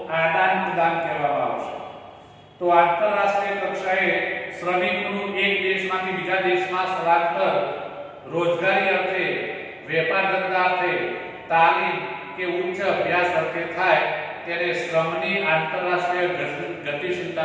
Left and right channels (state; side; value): identical; both; correlation 1.00